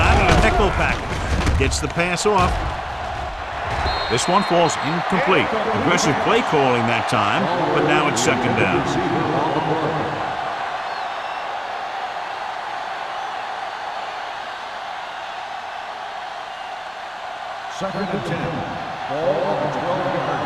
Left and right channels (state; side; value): identical; both; correlation 1.00